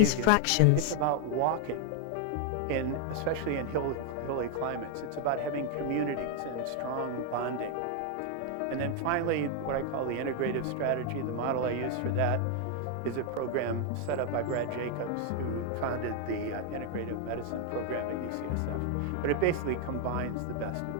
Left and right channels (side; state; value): both; different; correlation 0.00